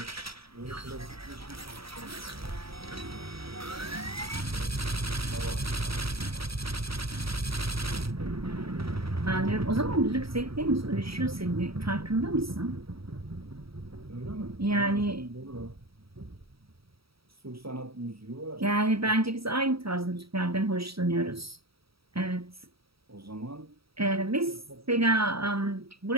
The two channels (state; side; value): late; left; 0.76 ms